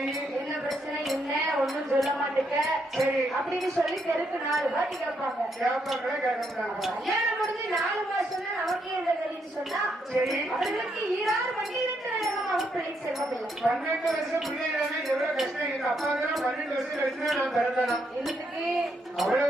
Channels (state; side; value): normal; both; correlation 0.77